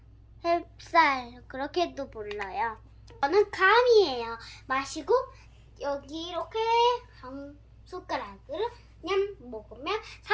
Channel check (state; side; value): identical; both; correlation 1.00